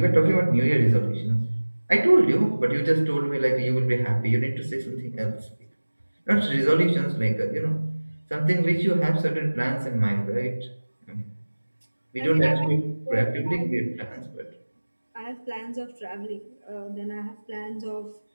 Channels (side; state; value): both; inverted; correlation -1.00